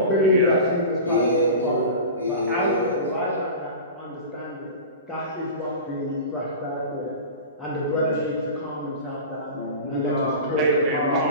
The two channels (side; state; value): both; inverted; correlation -0.32